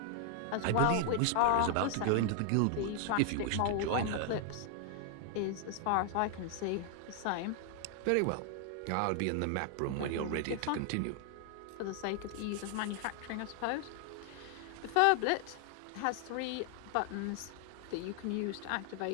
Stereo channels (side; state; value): both; different; correlation 0.00